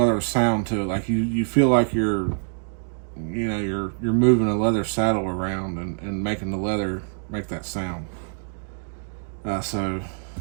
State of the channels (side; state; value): left; silent; 62 dB below the other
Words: sound to it. Like you feel like you're moving a leather saddle around and making the leather make that sound. So,